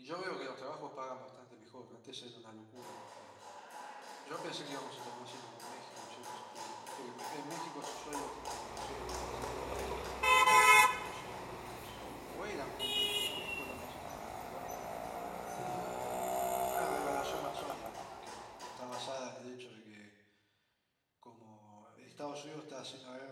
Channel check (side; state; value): both; identical; correlation 1.00